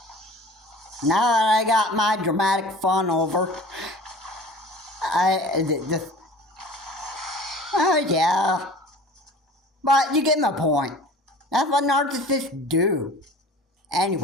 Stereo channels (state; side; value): normal; both; correlation 0.42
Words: Now that I got my dramatic fun over, yeah. But you get my point. That's what narcissists do.